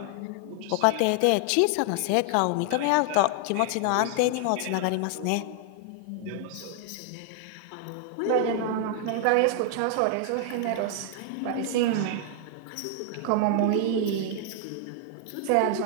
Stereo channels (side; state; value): both; different; correlation 0.00